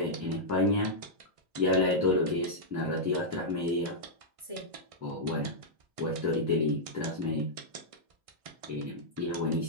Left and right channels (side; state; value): left; late; 1.6 ms